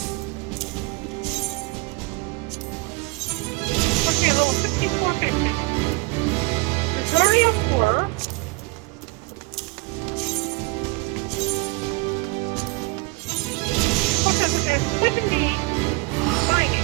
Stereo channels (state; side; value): quieter; left; 25.4 dB